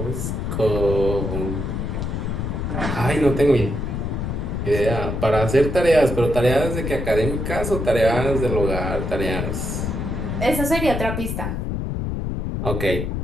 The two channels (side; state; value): left; noise; rumble, 2 dB below the sound